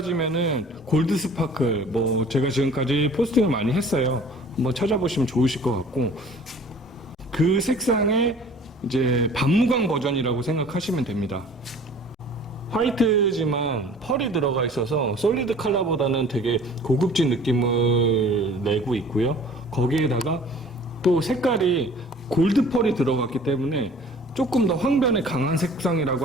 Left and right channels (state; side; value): normal; both; correlation 0.48